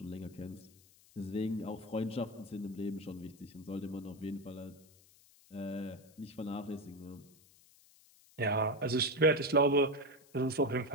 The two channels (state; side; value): noise; left; hiss, 27 dB below the sound